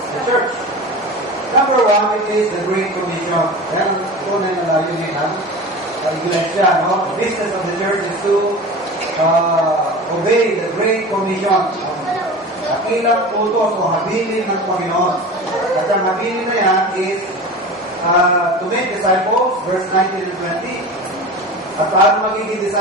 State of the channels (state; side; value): normal; both; correlation 0.32